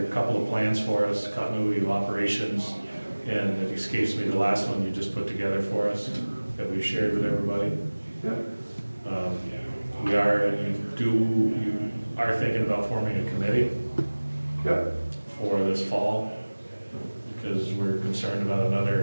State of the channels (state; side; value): inverted; both; correlation -1.00